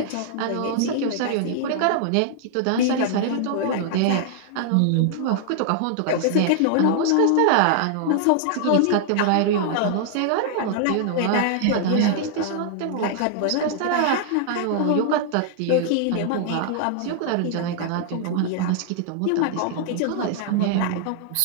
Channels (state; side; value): different; both; correlation -0.01